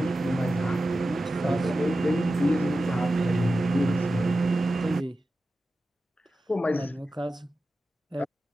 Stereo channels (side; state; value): both; normal; correlation 0.93